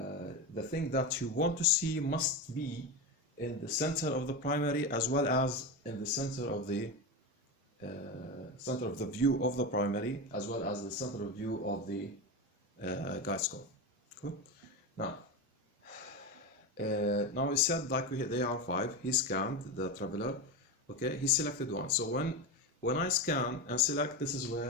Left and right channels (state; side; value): normal; both; correlation 0.18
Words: thing that you want to see must be in the center of the primary as well as in the center of the view of the primary as well as the center of view of the guide scope. Cool. Now we said, like they are 5. He scanned the traveler. Okay, he selected one. So when I scan and select, this is